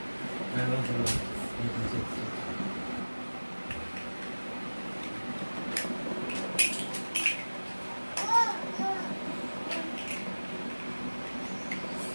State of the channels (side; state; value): both; inverted; correlation -1.00